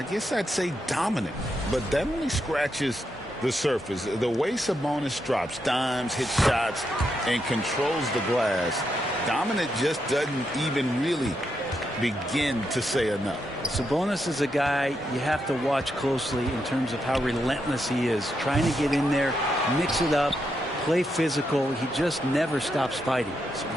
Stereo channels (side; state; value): both; normal; correlation 0.82